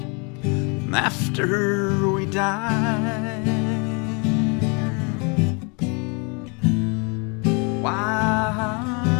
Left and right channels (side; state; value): right; quieter; 33.6 dB